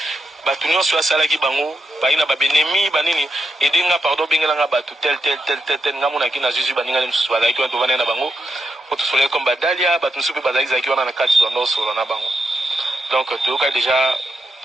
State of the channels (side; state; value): both; normal; correlation 0.83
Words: batu nyonso asala ki bango baina babenemi banini edenga pardon bengela nga batu tel nga mona ki na Jésus baninga na mususu badaki to vana na bango o to sole comme badalia batu mususu badaki zaki wana na kati to ndo solo na bango donc to ka déjà